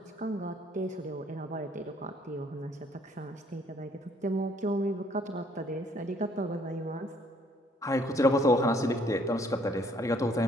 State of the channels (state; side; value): normal; both; correlation 0.63